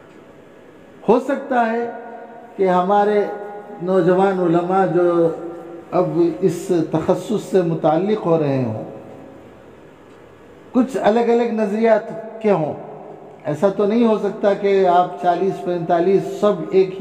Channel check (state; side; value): identical; both; correlation 1.00